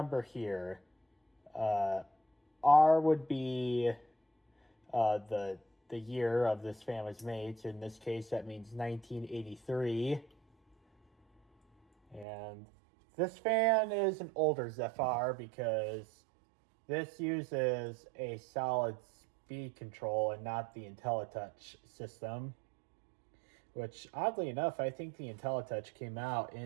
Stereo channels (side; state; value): left; drops out; at 12.2 s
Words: here, R would be the year of this fan was made. So in this case, that means 1983. And this fan is an older Zephyr because this uses a solid speed control and not the IntelliTouch system, which oddly enough, I think the IntelliTouch came out